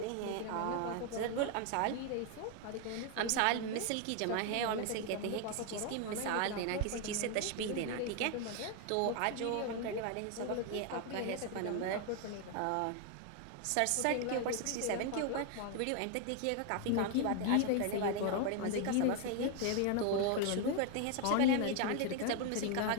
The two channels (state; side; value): different; both; correlation 0.01